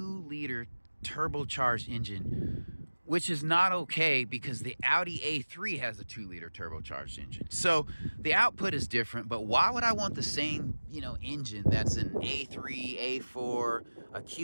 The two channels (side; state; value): both; inverted; correlation -1.00